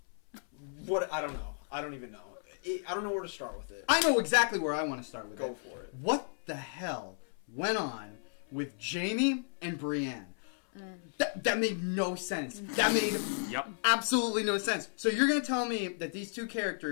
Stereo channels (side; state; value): right; silent; 55 dB below the other